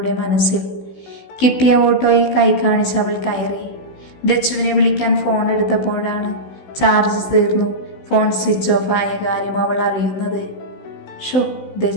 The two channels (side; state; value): right; late; 16 ms